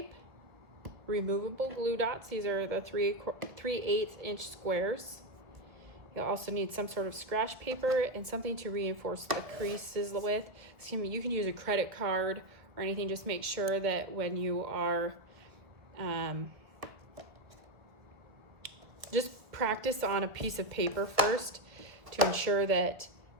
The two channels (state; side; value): late; left; 1.4 ms